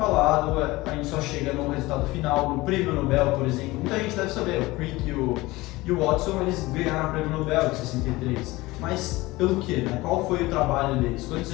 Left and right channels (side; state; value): right; quieter; 20.3 dB